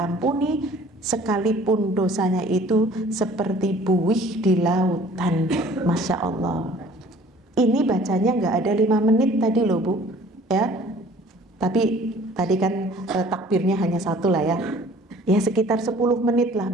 sekalipun dosanya itu seperti buih di lautan. Masya Allah. Ini bacanya nggak ada 5 menit tadi loh Bu, ya. Tapi tadi kan takbirnya hanya 1 lah ya. Ya sekitar 10 menit lah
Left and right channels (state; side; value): normal; both; correlation 0.51